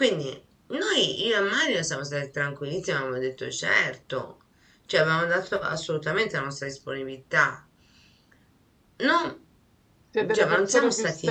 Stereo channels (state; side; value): identical; both; correlation 1.00